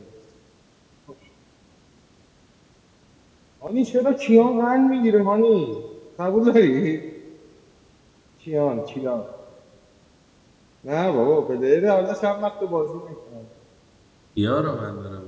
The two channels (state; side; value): identical; both; correlation 1.00